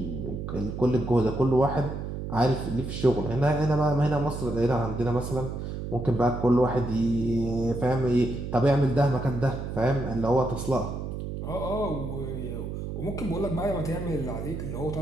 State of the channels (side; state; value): right; noise; hum, 6 dB below the sound